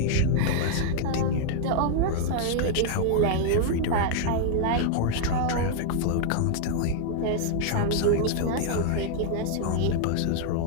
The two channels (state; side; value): different; both; correlation -0.01